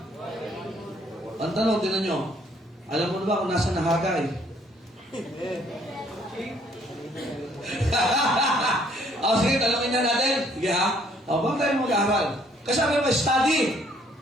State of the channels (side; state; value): both; normal; correlation 0.64